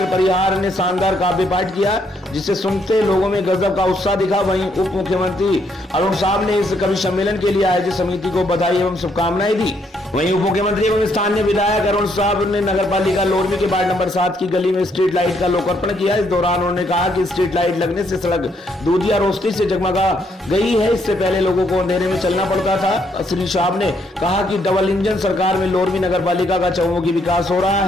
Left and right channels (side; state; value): both; normal; correlation 0.72